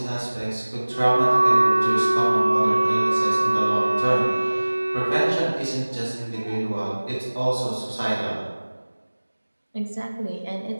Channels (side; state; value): both; inverted; correlation -1.00